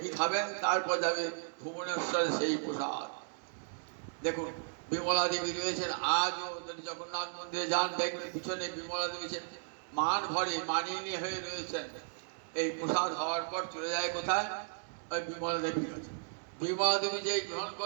খাবেন, তারপর যাবে ভুবনেশ্বরে সেই প্রসাদ। দেখুন বিমলা দেবী রয়েছেন আজও, যদি জগন্নাথ মন্দিরে যান দেখবেন পিছনে বিমলা দেবী মান ভরে মানিনী হয়ে রয়েছেন। এই প্রসাদ হওয়ার পর চলে যায় কোথায়? ওই বিমলা দেবীর কাছে। বিমলা দেবী যেই গ্রহণ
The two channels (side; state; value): left; silent; digital silence